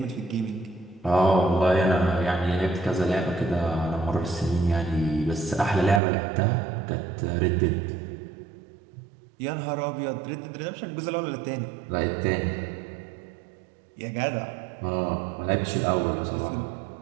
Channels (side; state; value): left; drops out; at 6.0 s